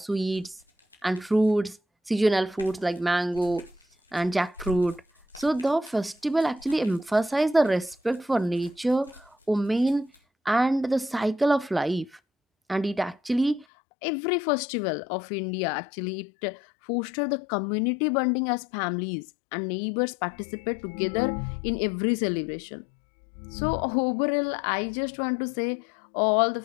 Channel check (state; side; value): drops out; right; at 13.7 s